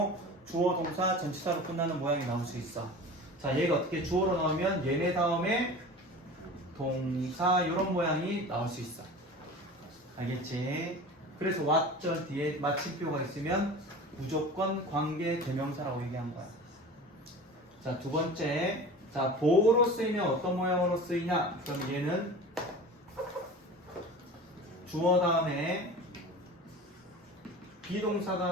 주어 동사 전치사로 끝나는 모양이 나올 수 있어. 자, 얘가 어떻게 주어로 나오면 얘네 다음에 동사 이런 모양이 나올 수 있어. 알겠지? 그래서 what 절 뒤에 마침표가 있으면 무조건 관계 대명사라고 얘기한 거야. 자, 두 번째. 자, 보호로 쓰이면 어떤 모양으로 쓰이냐? 그럼 얘는 주어 다음에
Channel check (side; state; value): both; normal; correlation 0.36